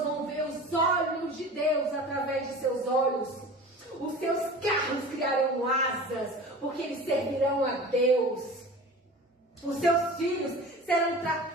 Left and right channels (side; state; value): both; normal; correlation 0.37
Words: vão ver os olhos de Deus através de seus olhos. Os seus carros criarão asas, porque eles servirão a Deus. Os seus filhos serão